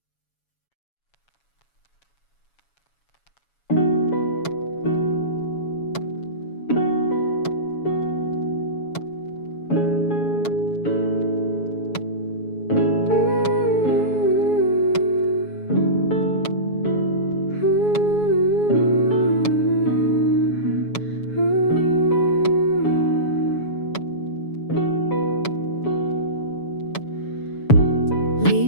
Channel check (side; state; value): right; late; 7.1 ms